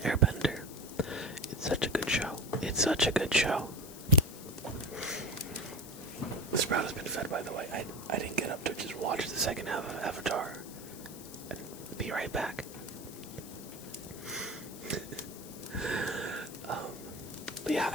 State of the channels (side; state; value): left; noise; hiss, 15 dB below the sound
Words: Airbender. It's such a good show. It's such a good show. The sprout has been fed, by the way. I didn't get up to just watch the second half of Avatar. And be right back. But yeah,